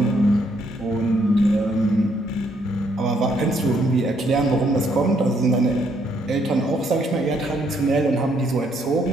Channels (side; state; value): both; normal; correlation 0.71